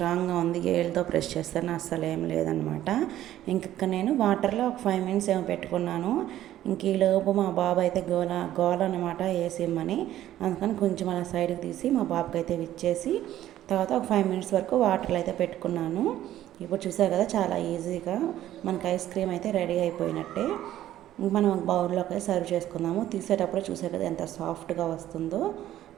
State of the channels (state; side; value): quieter; left; 13.0 dB